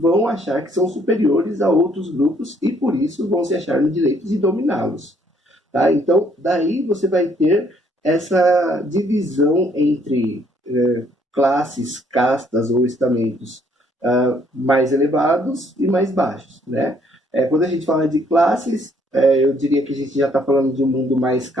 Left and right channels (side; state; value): both; normal; correlation 0.66